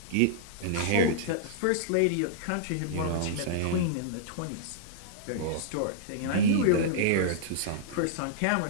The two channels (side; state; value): both; different; correlation -0.02